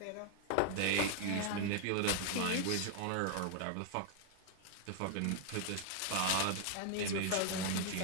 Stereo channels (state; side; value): different; both; correlation 0.00